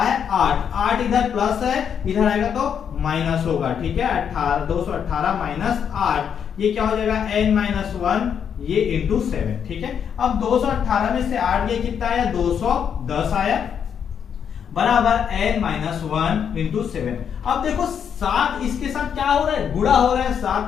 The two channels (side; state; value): right; quieter; 7.8 dB